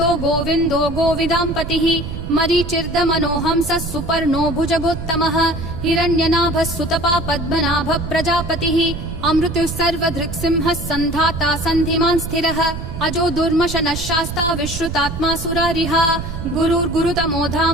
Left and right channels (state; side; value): noise; right; rumble, 7 dB below the sound